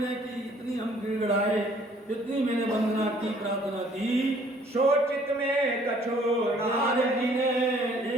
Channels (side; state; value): both; normal; correlation 0.59